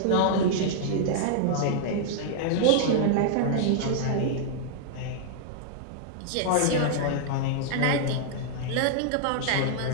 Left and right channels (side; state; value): both; different; correlation -0.01